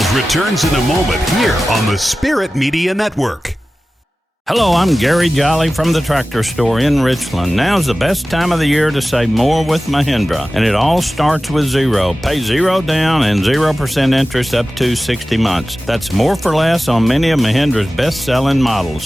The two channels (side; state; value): both; normal; correlation 0.95